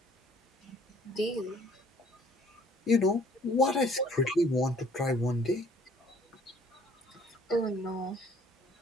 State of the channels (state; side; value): normal; both; correlation 0.57